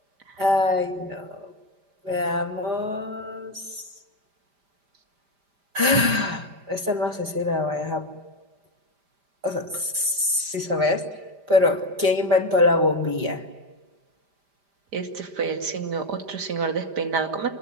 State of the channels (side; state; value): left; late; 5.0 ms